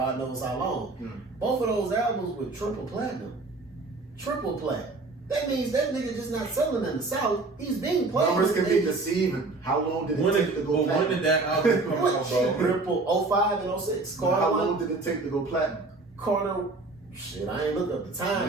knows how long. Mm. Both of those albums were triple platinum. Triple plat. That means that nigga just not selling in the South. He's being played. Numbers can be deceiving. How long did it take to go platinum? When did that album come out, bro? Triple 05 and 06. Carter how long did it take to go platinum? Carter. Shit, I ain't look up the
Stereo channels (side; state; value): left; quieter; 3.5 dB